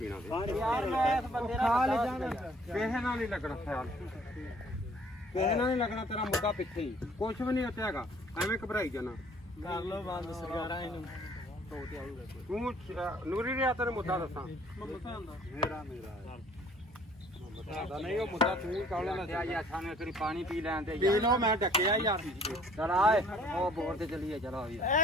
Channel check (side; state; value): both; normal; correlation 0.56